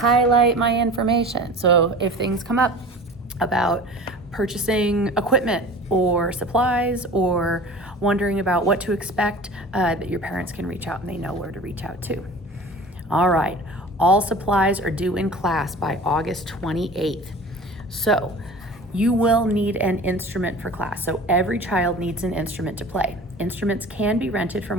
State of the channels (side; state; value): both; normal; correlation 0.39